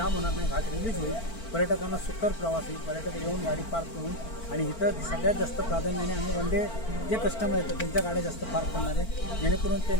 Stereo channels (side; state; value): right; late; 4.5 ms